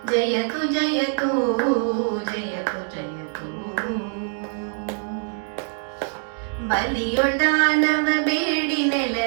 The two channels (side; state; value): left; silent; 58 dB below the other